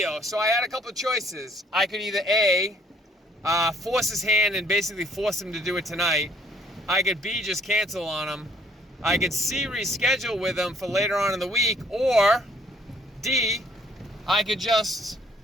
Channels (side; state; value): both; normal; correlation 0.62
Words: So I had a couple of choices. I could either A, force his hand and basically force him to do it tonight. I could B, just cancel on him. I could C, reschedule with him for later on in the week, or D, I could just